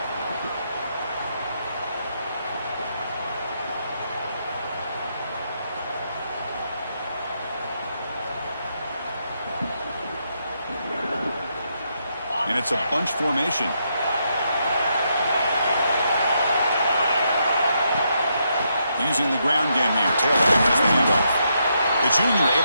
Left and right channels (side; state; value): both; inverted; correlation -0.79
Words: And it's a bunch formation. Using the ground game here. Taylor has the handoff. The junior